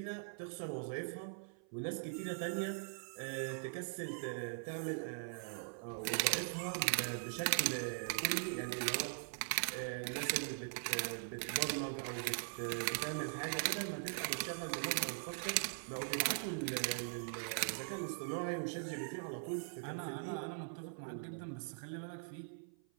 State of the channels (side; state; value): left; silent; 50 dB below the other